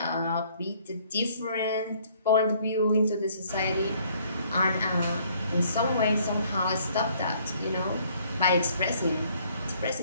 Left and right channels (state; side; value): inverted; both; correlation -0.62